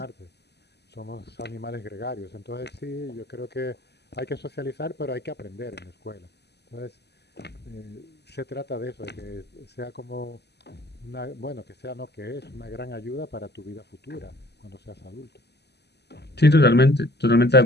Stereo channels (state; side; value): late; right; 0.49 ms